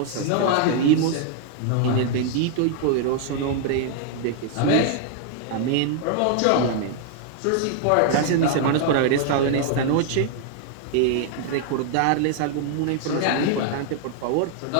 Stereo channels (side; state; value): both; different; correlation 0.00